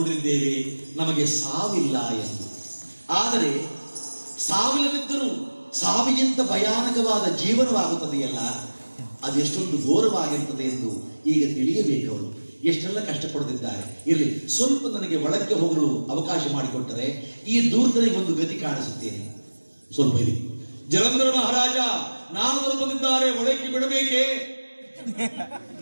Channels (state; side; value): inverted; both; correlation -1.00